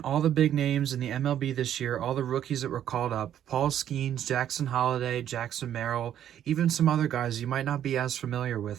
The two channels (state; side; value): quieter; left; 10.5 dB